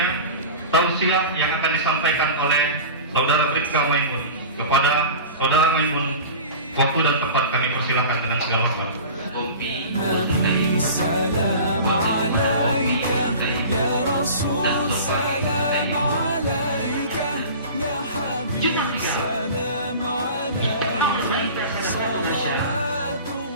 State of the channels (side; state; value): both; inverted; correlation -0.36